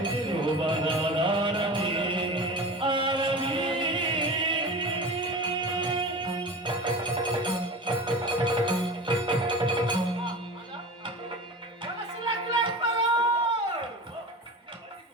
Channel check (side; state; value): both; normal; correlation 0.32